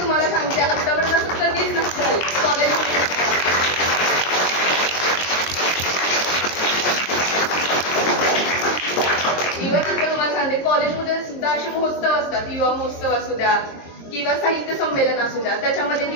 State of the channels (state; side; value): late; right; 22 ms